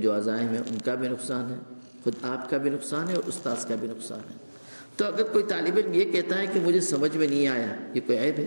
عزائم ہیں ان کا بھی نقصان ہے، خود آپ کا بھی نقصان ہے اور استاذ کا بھی نقصان ہے۔ تو اگر کوئی طالب علم یہ کہتا ہے کہ مجھے سمجھ میں نہیں آیا، یہ کوئی عیب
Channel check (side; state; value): both; inverted; correlation -1.00